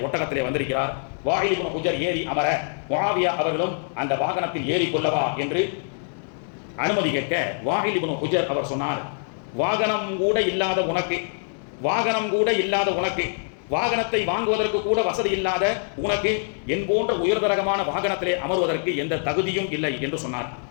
ஒட்டகத்திலே வந்திருக்கிறார். வாயில் இப்னு ஹுஜர் ஏறி அமர முஆவியா அவர்களும் அந்த வாகனத்தில் ஏறி கொள்ளவா என்று அனுமதி கேட்க வாயில் இப்னு ஹுஜர் அவர் சொன்னார், வாகனம் கூட இல்லாத உனக்கு, வாகனம் கூட இல்லாத உனக்கு, வாகனத்தை வாங்குவதற்கு கூட வசதி இல்லாத உனக்கு என் போன்ற உயர்தரகமான வாகனத்திலே அமர்வதற்கு எந்த தகுதியும் இல்லை என்று சொன்னார்.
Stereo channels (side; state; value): right; silent; 62 dB below the other